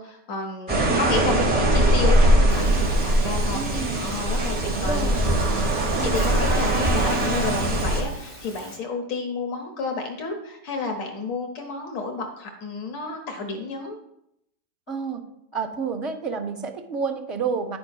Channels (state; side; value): late; right; 6.3 ms